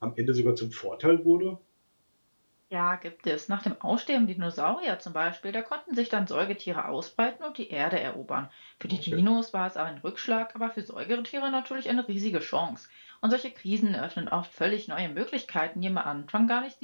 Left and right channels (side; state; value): both; inverted; correlation -1.00